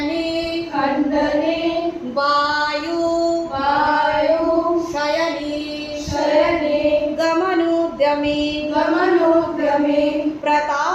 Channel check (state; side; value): identical; both; correlation 1.00